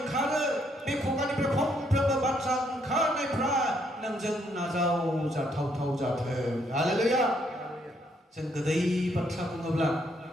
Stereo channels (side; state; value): both; normal; correlation 0.72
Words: ओंखारो बे खुगानिफ्राय फंफ्रोमबो बाथ्रा ओंखारनायफ्रा नोंजों नाजावजाथाव जाथों हालेलुया जों गोदै बाथ्रा बुङोब्ला